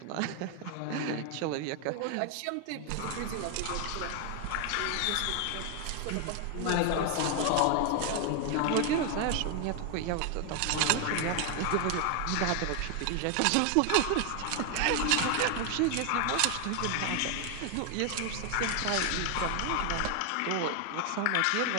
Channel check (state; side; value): different; both; correlation 0.00